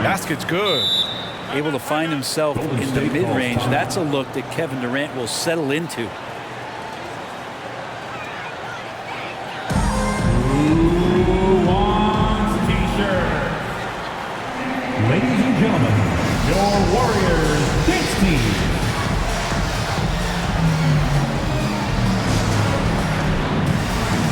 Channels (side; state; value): both; identical; correlation 1.00